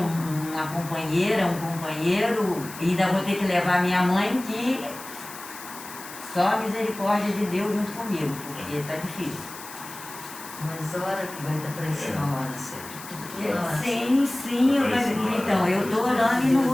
companheira, um companheiro, e ainda vou ter que levar minha mãe, que só a misericórdia de Deus junto comigo, porque tá difícil. Mas hora que vai dar para isso na hora certa. Sim, então, eu estou orando e não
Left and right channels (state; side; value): noise; left; hiss, 14 dB below the sound